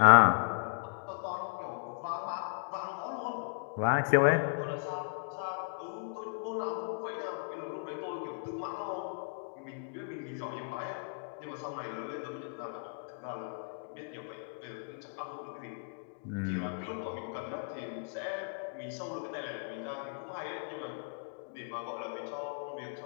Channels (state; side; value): silent; right; digital silence